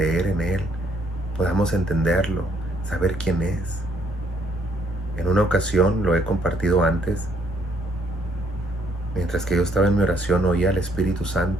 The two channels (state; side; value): normal; both; correlation 0.68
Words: en Él, podamos entenderlo, saber quién es. En una ocasión, lo he compartido antes, mientras que yo estaba en mi oración, oía al Espíritu